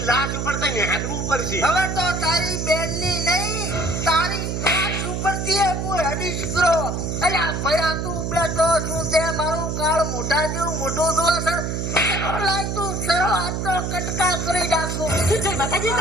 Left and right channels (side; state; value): right; noise; hum, 2 dB below the sound